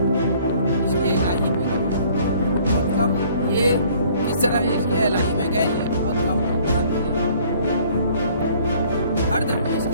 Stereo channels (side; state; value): both; inverted; correlation -0.57